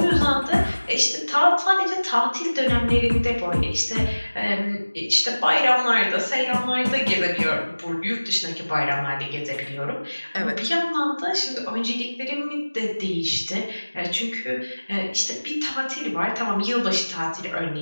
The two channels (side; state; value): both; inverted; correlation -1.00